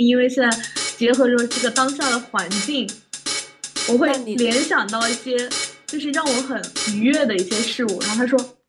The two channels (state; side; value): identical; both; correlation 1.00